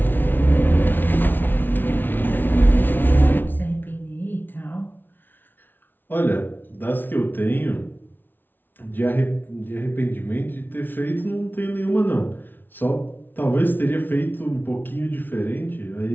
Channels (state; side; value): late; right; 0.094 ms